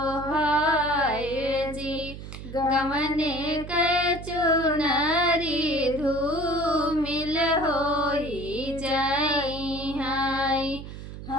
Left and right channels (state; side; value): noise; right; hum, 11 dB below the sound